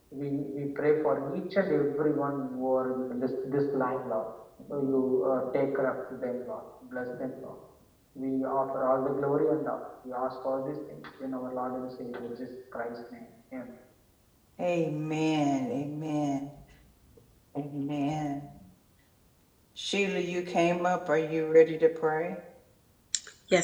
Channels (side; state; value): both; identical; correlation 1.00